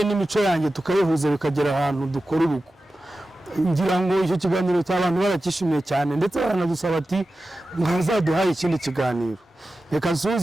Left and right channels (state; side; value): normal; both; correlation 0.94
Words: n'imico yanjye tukayihuza bikagera ahantu dukora urugo. Ngira ngo icyo kiganiro cy'abantu barakishimiye cyane, ndetse baranadusaba ati mwazaduhaye ikindi kiganiro. Reka